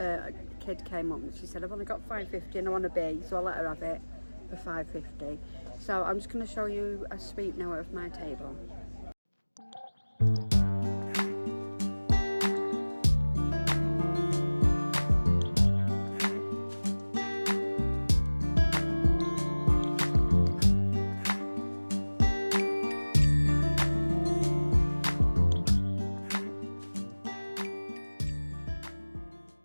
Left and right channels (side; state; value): both; inverted; correlation -1.00